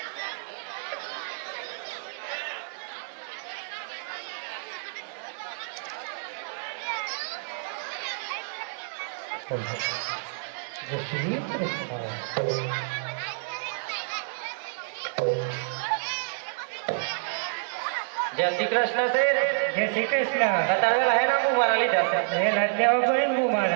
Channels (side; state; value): left; silent; digital silence